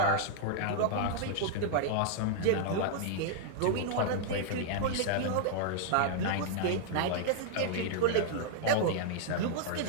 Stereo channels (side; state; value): both; different; correlation -0.01